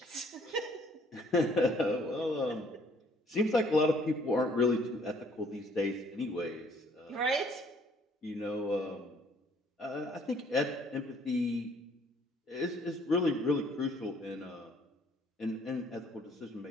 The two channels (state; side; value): normal; both; correlation 0.61